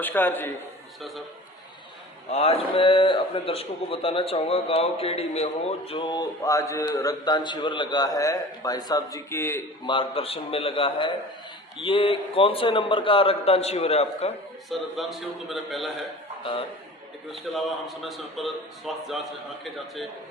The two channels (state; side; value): normal; both; correlation 0.40